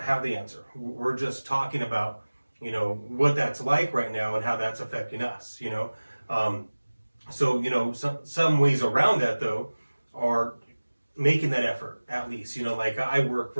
have the answer. We're just talking about, what that's like right now and how that's affecting us, So, some ways around that though are making that effort at least, like I work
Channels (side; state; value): both; inverted; correlation -1.00